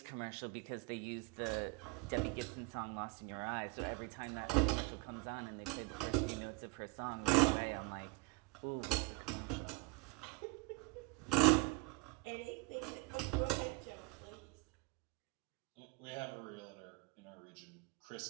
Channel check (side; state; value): left; quieter; 26.7 dB